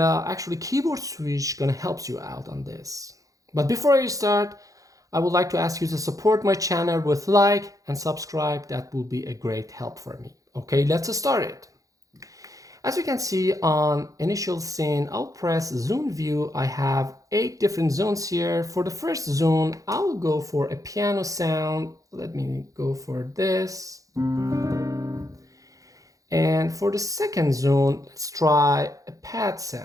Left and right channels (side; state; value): left; late; 0.17 ms